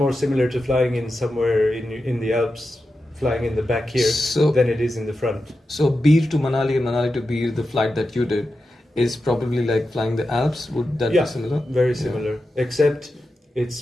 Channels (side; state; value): both; normal; correlation 0.90